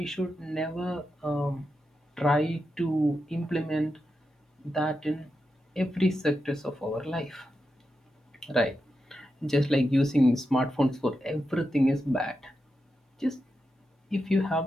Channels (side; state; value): both; normal; correlation 0.88